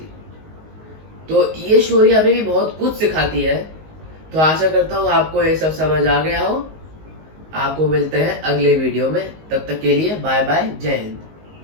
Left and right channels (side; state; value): left; late; 19 ms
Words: तो ये स्टोरी हमें भी बहुत कुछ सिखाती है। तो आशा करता हूँ आपको ये सब समझ आ गया हो। आपको मिलते हैं अगले वीडियो में, तब तक के लिए बाय बाय, जय हिंद।